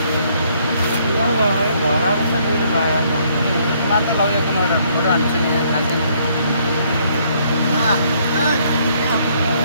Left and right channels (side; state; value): both; inverted; correlation -0.67